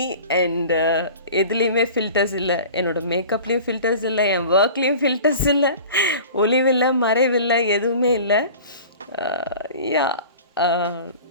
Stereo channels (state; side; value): inverted; both; correlation -0.41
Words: And எதுலேயுமே ஃபில்டர்ஸ் இல்லை, என்னோடய மேக்கப்லேயும் ஃபில்டர்ஸ் இல்லை, என் ஒர்க்லேயும் ஃபில்டர்ஸ் இல்லை, ஒளிவில்லை மறைவில்லை, எதுவுமே இல்லை. யா,